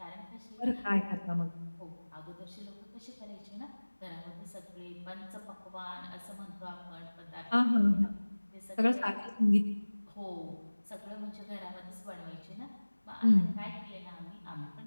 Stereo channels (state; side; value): inverted; both; correlation -1.00